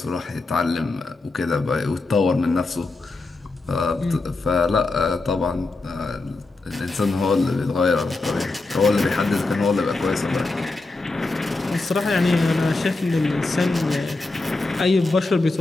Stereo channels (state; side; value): quieter; right; 3.3 dB